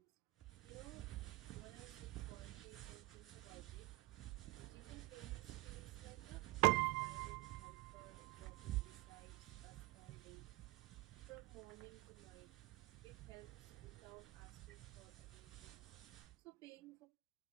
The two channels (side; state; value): left; quieter; 22.1 dB